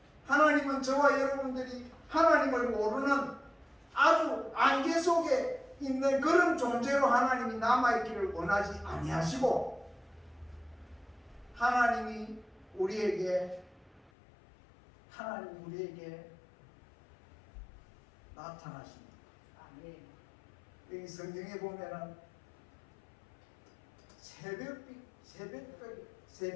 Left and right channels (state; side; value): drops out; right; at 14.1 s